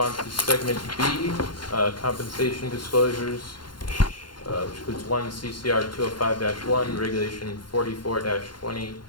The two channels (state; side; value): late; right; 0.72 ms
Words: to segment B, compensation disclosures, which includes 1 CCR 205-1, regulation